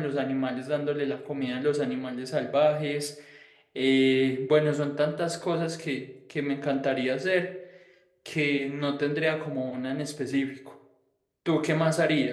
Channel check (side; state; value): both; identical; correlation 1.00